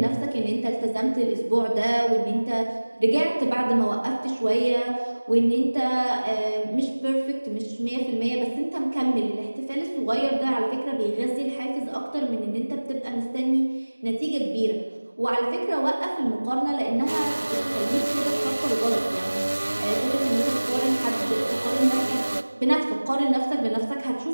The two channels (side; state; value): both; inverted; correlation -1.00